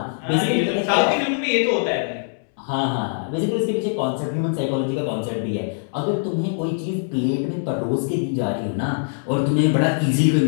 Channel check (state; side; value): silent; right; digital silence